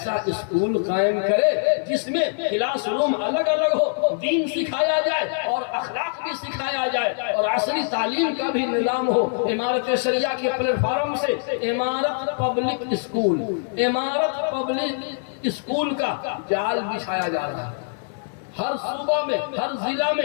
اسکول قائم کرے جس میں کلاس روم الگ الگ ہو، دین سکھایا جائے اور اخلاق بھی سکھایا جائے اور عصری تعلیم کا بھی نظام ہو. امارت شریعہ کے پلیٹ فارم سے امارت پبلک اسکول کا جال بچھایا جا رہا ہے. ہر صوبہ میں، ہر ضلع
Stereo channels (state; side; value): silent; right; digital silence